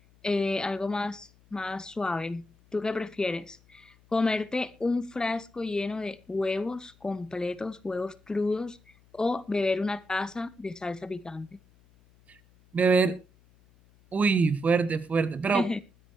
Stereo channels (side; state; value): left; noise; hum, 29 dB below the sound